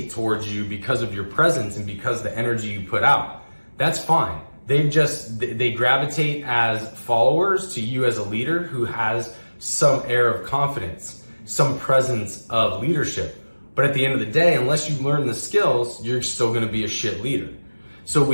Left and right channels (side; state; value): both; inverted; correlation -1.00